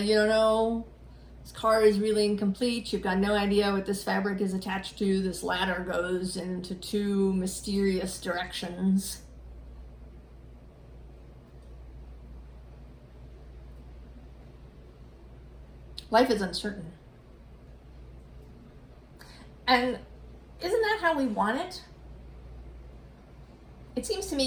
you don't know, this car is really incomplete. You've got no idea what this fabric is attached to. This ladder goes into 2 mysterious directions. Life is uncertain. And isn't that how we want it? It seems to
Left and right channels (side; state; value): both; identical; correlation 1.00